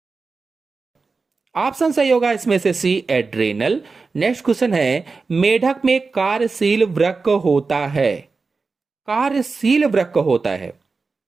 ऑप्शन सही होगा इसमें से सी, एड्रेनल। नेक्स्ट क्वेश्चन है, मेढक में कार्यशील वृक्क होता है, कार्यशील वृक्क होता है।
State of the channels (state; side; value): quieter; left; 4.3 dB